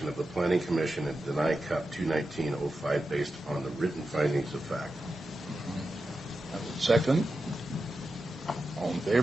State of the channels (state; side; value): normal; both; correlation 0.90